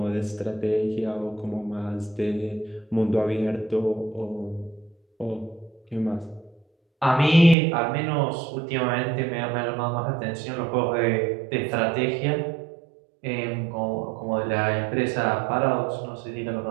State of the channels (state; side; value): drops out; left; at 7.6 s